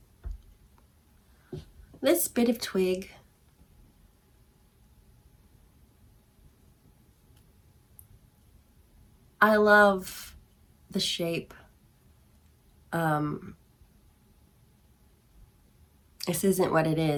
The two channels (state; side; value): identical; both; correlation 1.00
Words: This bit of twig I love the shape. This isn't what it